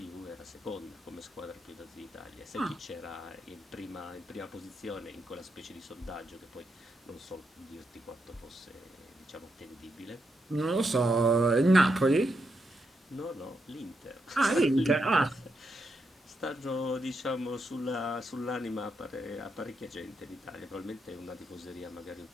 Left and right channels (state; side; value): normal; both; correlation 0.82